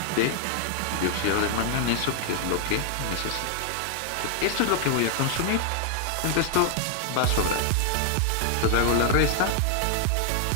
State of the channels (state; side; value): different; both; correlation 0.00